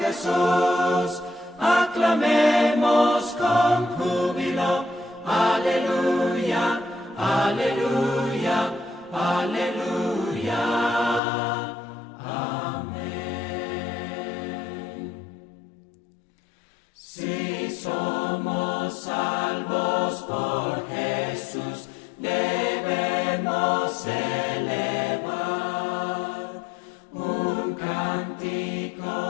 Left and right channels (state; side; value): drops out; right; at 11.2 s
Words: aclamemos con júbilo. Aleluya, aleluya, aleluya. Amén. Si somos salvos por Jesús, debemos elevar un